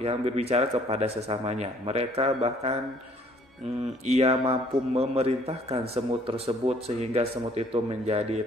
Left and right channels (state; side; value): normal; both; correlation 0.60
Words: kepada sesamanya. Mereka bahkan ia mampu memerintahkan semut tersebut sehingga semut itu menjadi